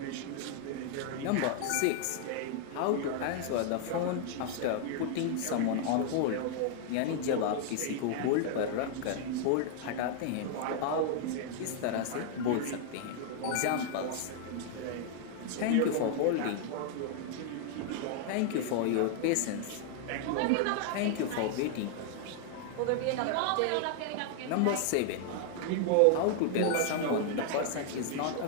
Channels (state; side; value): different; both; correlation 0.00